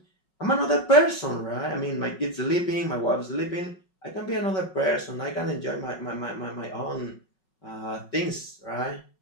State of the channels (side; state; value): right; late; 5.4 ms